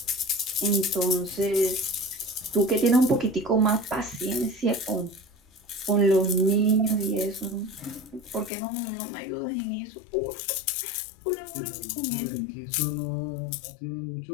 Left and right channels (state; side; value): drops out; right; at 8.5 s